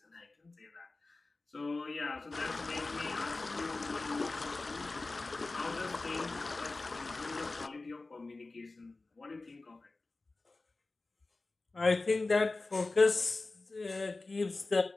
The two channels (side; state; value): right; quieter; 3.4 dB